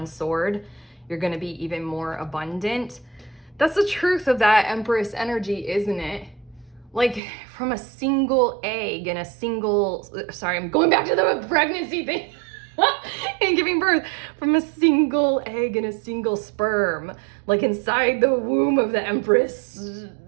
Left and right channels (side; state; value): left; drops out; at 7.2 s